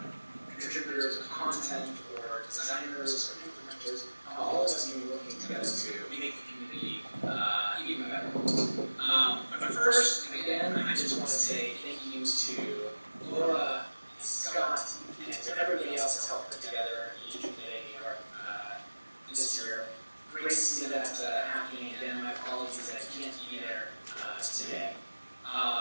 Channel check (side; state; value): both; inverted; correlation -1.00